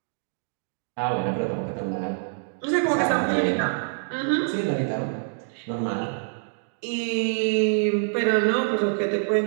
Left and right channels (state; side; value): silent; left; digital silence